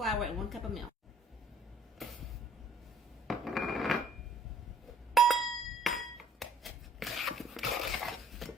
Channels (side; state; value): both; normal; correlation 0.57